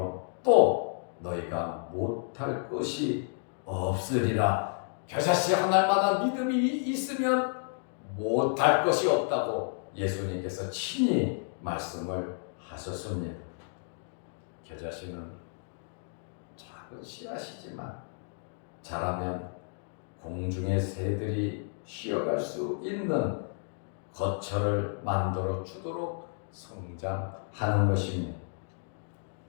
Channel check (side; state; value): right; silent; 57 dB below the other